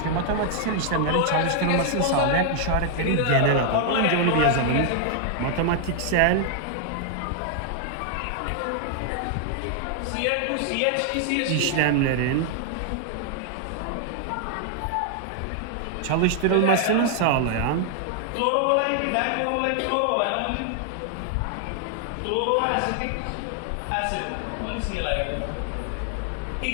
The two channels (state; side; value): different; both; correlation 0.00